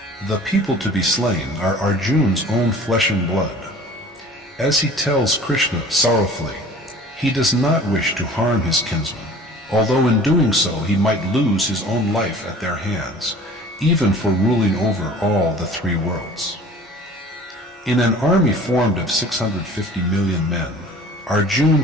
The people to be slain are Arjuna's own flesh and blood. As he tells Krishna sorrowfully, he does not wish to harm his kinsmen, although in doing so he might lose his own life at their hands, even for ruling over all the three worlds. In an army formed of 650 million men,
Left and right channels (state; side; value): normal; both; correlation 0.46